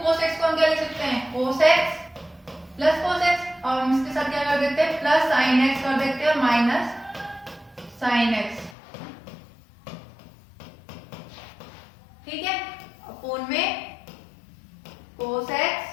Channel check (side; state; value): right; drops out; at 8.8 s